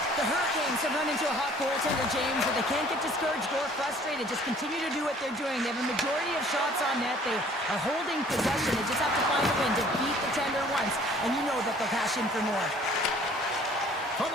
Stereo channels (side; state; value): both; normal; correlation 0.55